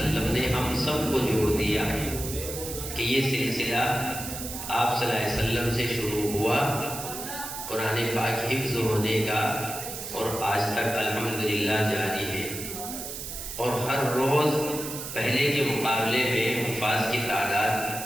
نے ہم سب کو جوڑ دیا کہ یہ سلسلہ آپ صلی اللہ علیہ وسلم سے شروع ہوا قرآن پاک حفظ ہونے کا، اور آج تک الحمدللہ جاری ہے. اور ہر روز پہلے کے مقابلے میں حفاظ کی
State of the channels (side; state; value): right; noise; hiss, 8 dB below the sound